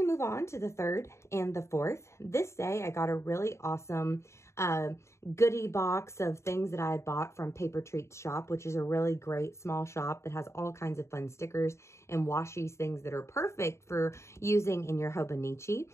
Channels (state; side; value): late; right; 0.13 ms